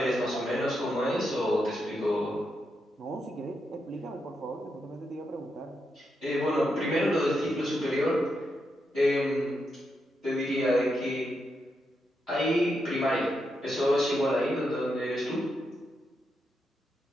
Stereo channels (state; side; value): normal; both; correlation 0.84